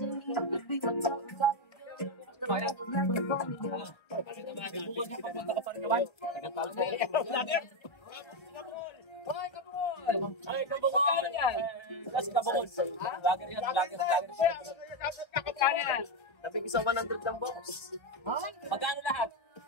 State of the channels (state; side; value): late; right; 1.3 ms